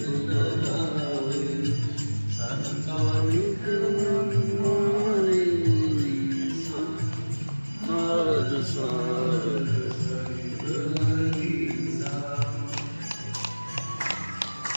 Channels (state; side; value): inverted; both; correlation -1.00